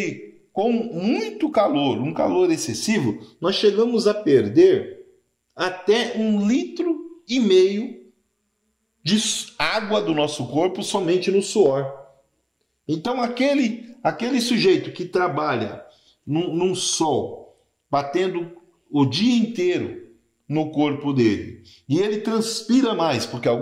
com muito calor, um calor excessivo, nós chegamos a perder até 1,5 litros de água do nosso corpo somente no suor. Então aquele sujeito que trabalha num sol, batendo o dia inteiro no corpo dele, e ele transpira mais, porque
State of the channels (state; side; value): identical; both; correlation 1.00